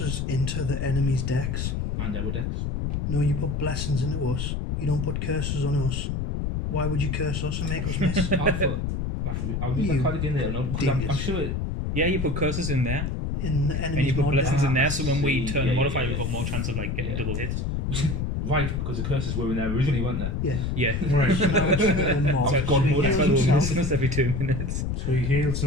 into the enemy's decks. And our decks. No, you put blessings into us. You don't put curses on us. Why would you curse us and make us miss? I thought I'll use that You card again later on because I'm dingus. sure it. Yeah, you put curses in there, In the and you enemy's put mod blessings deck. in there, so when we See, turn yeah, the yeah, modifier, yeah. we've got more chance of like getting Yeah. double hits. Right, because the curses were in there originally, weren't they? Yeah. Yeah. Right. So now it's the mod. So So God he mode, That's heals why we're himself. missing us every 2 minutes. So he heals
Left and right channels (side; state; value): left; noise; rumble, 1 dB below the sound